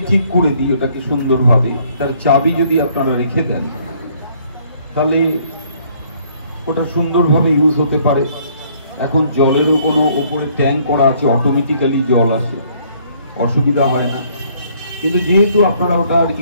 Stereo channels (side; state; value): both; inverted; correlation -0.63